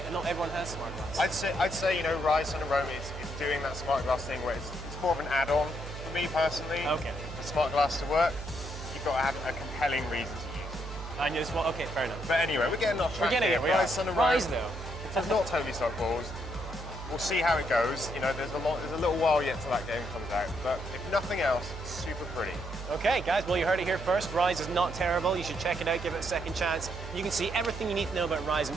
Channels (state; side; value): noise; right; hum, 9 dB below the sound